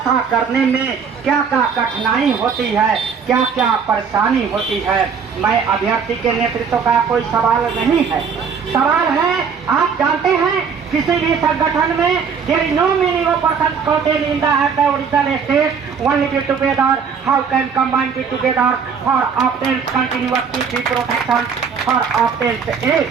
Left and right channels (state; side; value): quieter; left; 6.3 dB